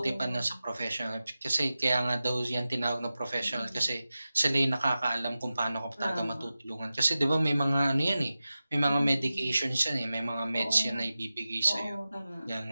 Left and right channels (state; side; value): inverted; both; correlation -0.94